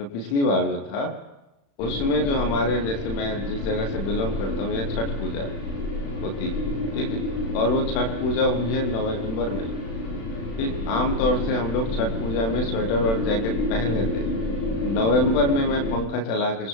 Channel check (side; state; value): right; late; 35 ms